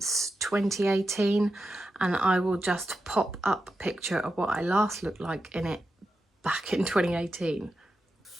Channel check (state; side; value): normal; both; correlation 0.89